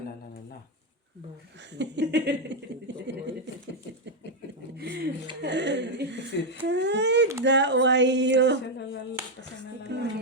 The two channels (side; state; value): both; normal; correlation 0.02